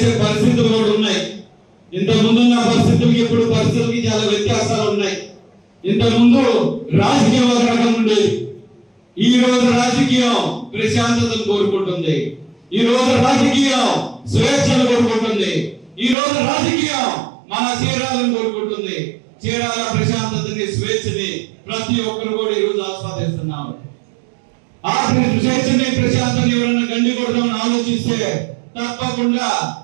పరిస్థితులు కూడా ఉన్నాయి. ఇంత ముందున్న పరిస్థితులకి ఇప్పుడు పరిస్థితులకి చాలా వ్యత్యాసాలు ఉన్నాయి. ఇంత ముందు రాజకీయం ఒక రకం ఉండేది. ఈ రోజు రాజకీయం ప్రశాంతతను కోరుకుంటుంది. ఈ రోజు రాజకీయం స్వేచ్ఛను కోరుకుంటుంది. ఈ రోజు రాజకీయం మన చీరాలను కోరుకుంటుంది. చీరాల ప్రశాంతతని, స్వేచ్ఛని ప్రతి ఒక్కరు కూడా ఈ రోజు ఆస్వాదిస్తున్నారు. ఆ స్వేచ్ఛని, ప్రశాంతని ఎవరైనా గండి కొడదామని ఆలోచిస్తే తప్పకుండా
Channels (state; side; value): drops out; left; at 16.2 s